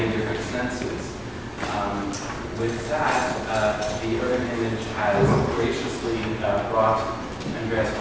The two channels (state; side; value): identical; both; correlation 1.00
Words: different senses. With that, the urban image has graciously brought Andreas